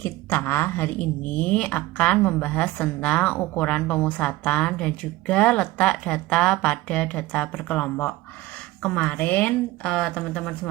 hari ini akan membahas tentang ukuran pemusatan dan juga letak data pada data berkelompok. Kemarin teman-teman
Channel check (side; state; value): left; quieter; 18.2 dB